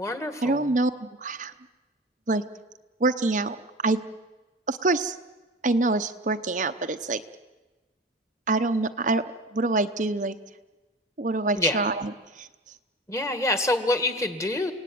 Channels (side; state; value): both; normal; correlation 0.34